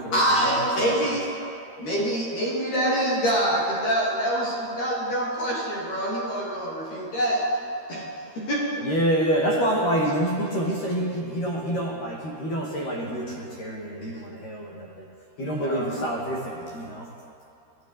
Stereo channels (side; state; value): right; late; 13 ms